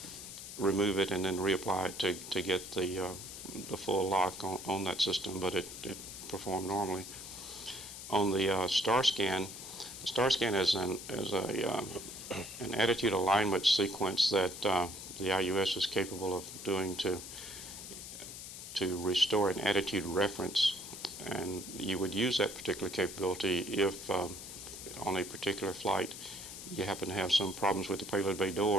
remove it and then reapply it to get the full lock on that system, but it performed normally. On the star scan is an attitude alignment sequence that the IUS is capable of doing to restore an attitude reference. And you would use that particular capability if on a particular flight you happen to have some problems with the payload bay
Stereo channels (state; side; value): noise; left; hiss, 11 dB below the sound